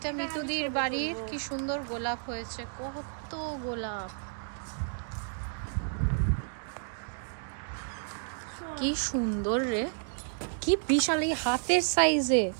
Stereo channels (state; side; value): silent; left; digital silence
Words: মিতুদির বাড়ির কি সুন্দর গোলাপ হয়েছে, কত গোলাপ, কি সুন্দর রে, কি বিশাল, এই হাতের সাইজে।